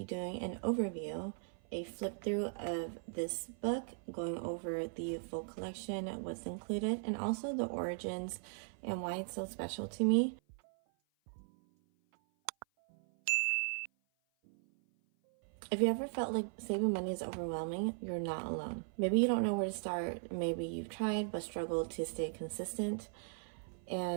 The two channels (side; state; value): left; silent; 52 dB below the other